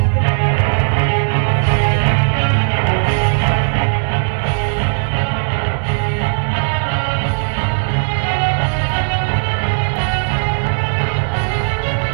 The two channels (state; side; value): silent; left; digital silence